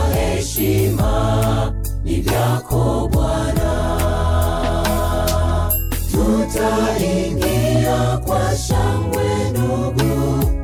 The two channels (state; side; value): identical; both; correlation 1.00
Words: heshima ni vyako Bwana. Tutaingia kwa shangwe ndugu,